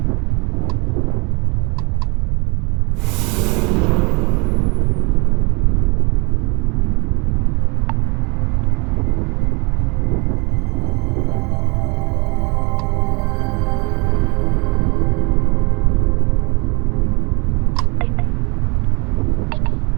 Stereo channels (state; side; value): quieter; left; 29.4 dB